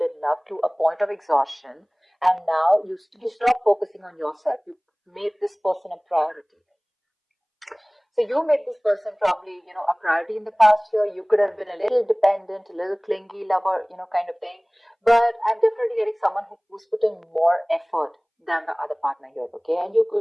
loved to a point of exhaustion. And now you stop focusing on yourself. You made this person a priority. So you made this person probably, a priority in the past year. You could have been a little dependent, a little clingy lover, kind of thing. But I'm definitely getting someone who's putting more effort than the other partner here, okay? And you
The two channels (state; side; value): identical; both; correlation 1.00